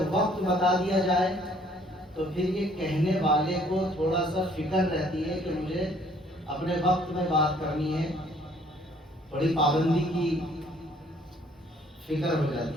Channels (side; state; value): both; normal; correlation 0.61